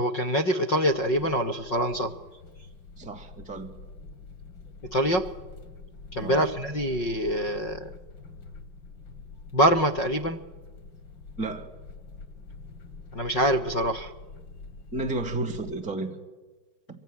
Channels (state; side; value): late; right; 5.5 ms